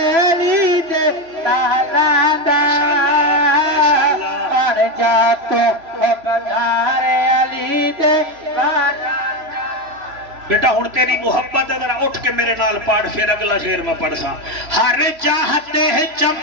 علی دے لالا دا پڑ جا تو بدار علی دے لالا بیٹا ہن تیری محبت ہے ذرا اٹھ کے میرے نال پڑھ پھر اگلا شعر میں پڑھ سا ہر چاہتے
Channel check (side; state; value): left; late; 3.0 ms